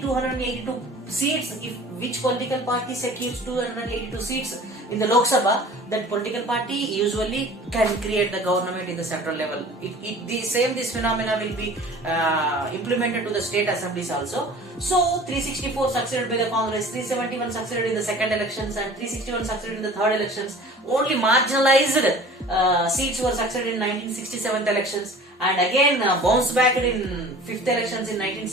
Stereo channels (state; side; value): normal; both; correlation 0.44